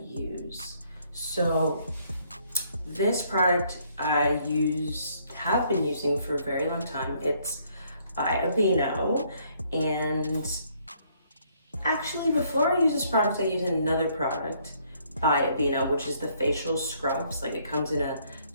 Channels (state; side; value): inverted; both; correlation -0.67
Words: use. So this product I have been using for a very long time. It's by Aveeno, and actually before I use this product, I use another product by Aveeno, which is the Faicial Scrubs. Like, it comes in a